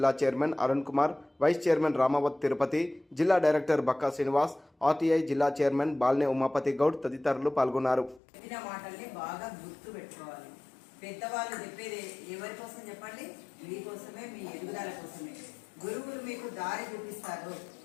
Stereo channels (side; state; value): right; drops out; at 8.2 s